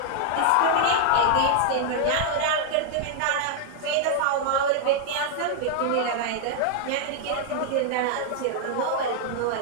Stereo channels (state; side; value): different; both; correlation 0.00